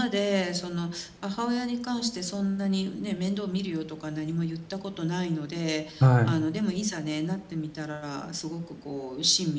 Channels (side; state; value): both; identical; correlation 1.00